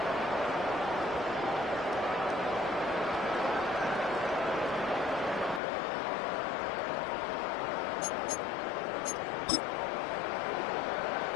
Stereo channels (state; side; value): drops out; right; at 5.6 s